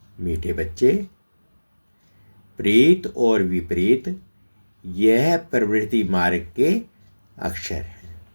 मीठे बच्चे, प्रीत और विपरीत यह प्रवृत्ति मार्ग के अक्षर हैं।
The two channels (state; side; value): inverted; both; correlation -1.00